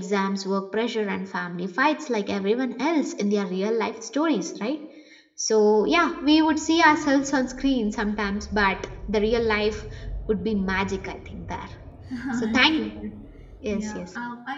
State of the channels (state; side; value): identical; both; correlation 1.00